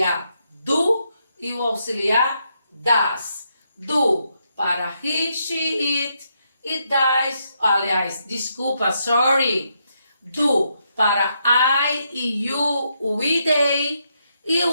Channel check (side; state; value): both; inverted; correlation -0.79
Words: do e o auxiliar das. Do para he, she, it e das, aliás, desculpa, sorry. Do para I e you, we, they e